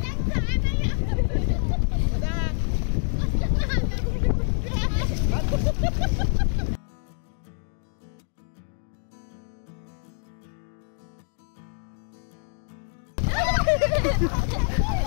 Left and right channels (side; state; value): right; silent; 56 dB below the other